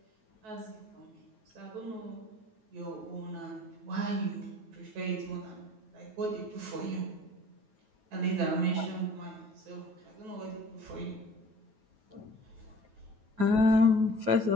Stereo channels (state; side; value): late; left; 9.3 ms